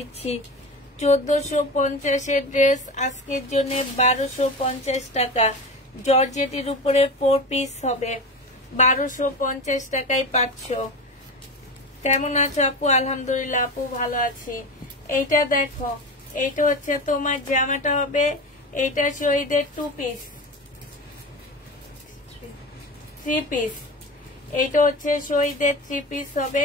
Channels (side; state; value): both; normal; correlation 0.27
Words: 1450-এর ড্রেস আজকের জন্য 1250 টাকা। জর্জেটের উপরে 4 পিস হবে। 1250 টাকায় পাচ্ছ। কেমন আছো আপু? আলহামদুলিল্লাহ আপু, ভালো আছি। এইটা দেখো, এইটা হচ্ছে তোমার জামাটা হবে। এইটা শহীদের 2 পিস, 3 পিস। এইটা হচ্ছে শহীদের 3 পিস হবে।